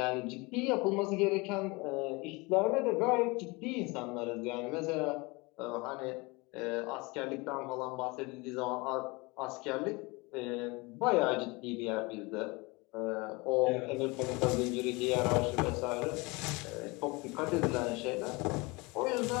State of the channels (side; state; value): right; quieter; 25.6 dB